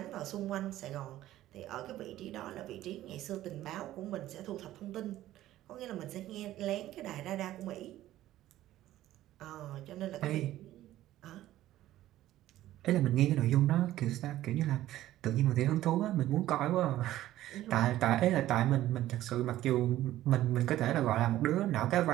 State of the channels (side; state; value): left; quieter; 14.3 dB